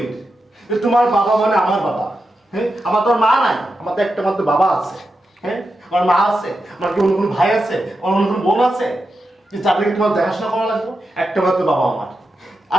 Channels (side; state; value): both; normal; correlation 0.89